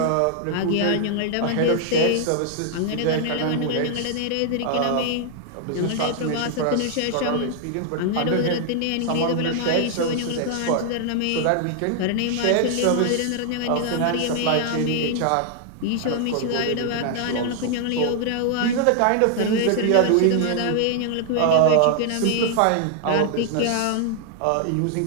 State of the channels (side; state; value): both; different; correlation 0.00